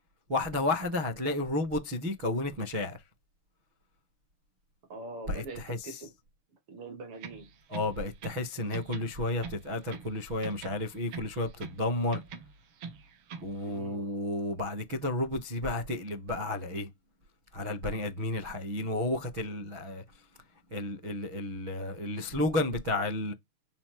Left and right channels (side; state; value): left; late; 6.2 ms